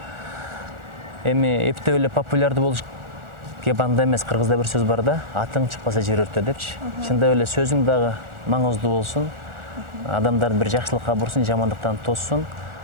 эми эптеп эле популярдуу болуш банда эмес, кыргызда бир сөз бар да, атың чыкпаса жер өртө депчи. Чындап эле сөзүң дагы маңыздуу болсун, адамдарды бир жакшылыкка бурсун, жамандыктан тоссун.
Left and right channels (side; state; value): left; late; 1.4 ms